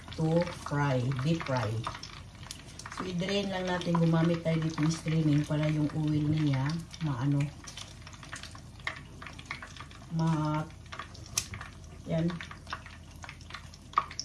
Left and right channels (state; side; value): identical; both; correlation 1.00